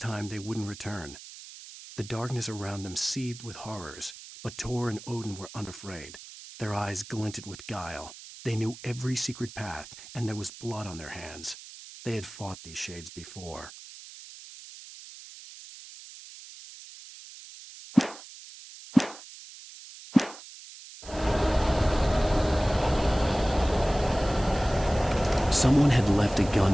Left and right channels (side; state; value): right; noise; hiss, 16 dB below the sound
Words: they wouldn't return. The darkness around them seethed with horrors, but Tor and Odin were unafraid. Their eyes glinted with guile. They knew every secret path, and there was blood on their hands. They had fought these shades before. Someone had left a